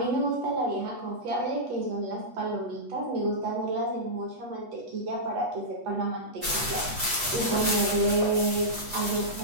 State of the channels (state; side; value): late; left; 8.2 ms